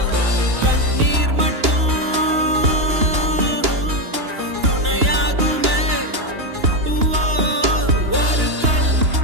கண்ணீர் மட்டும் துணையாகுமே. ஒரு கல்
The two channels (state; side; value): late; left; 2.9 ms